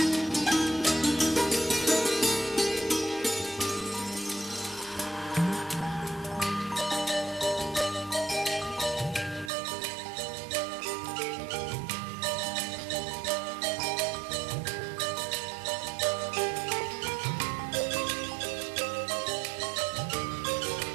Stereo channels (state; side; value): drops out; left; at 9.5 s